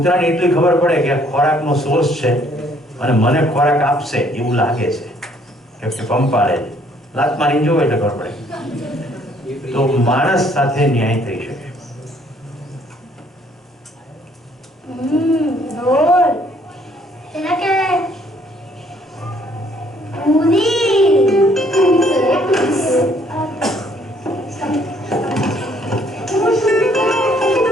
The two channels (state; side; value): normal; both; correlation 0.64